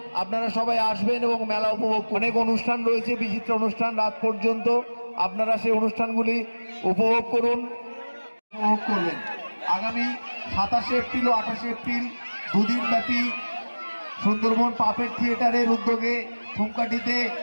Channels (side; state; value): both; inverted; correlation -1.00